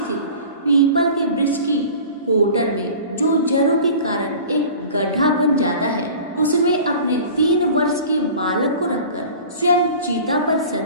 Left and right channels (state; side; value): inverted; both; correlation -0.41